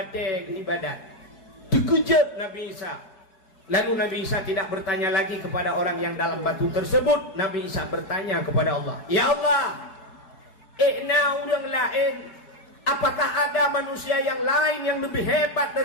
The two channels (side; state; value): right; late; 4.7 ms